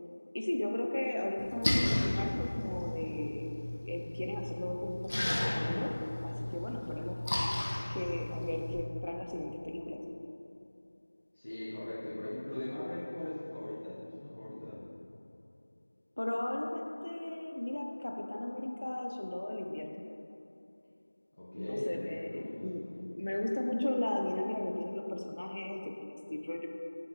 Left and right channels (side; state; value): both; inverted; correlation -1.00